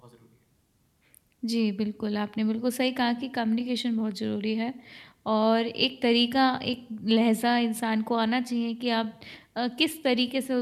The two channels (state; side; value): identical; both; correlation 1.00